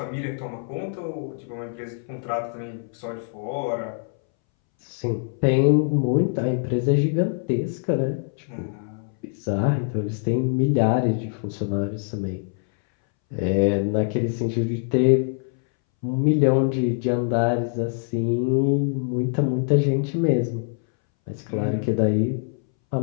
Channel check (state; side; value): silent; right; 62 dB below the other